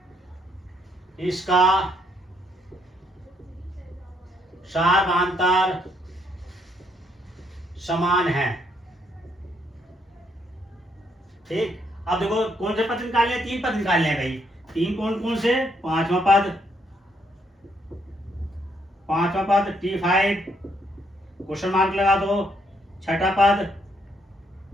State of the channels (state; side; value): normal; both; correlation 0.73